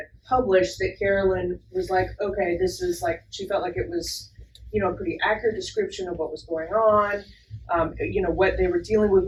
published that Carolyn was like, okay, this is like, she felt like it was, a pretty accurate description of what was going on, what they were dealing with,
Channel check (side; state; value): both; identical; correlation 1.00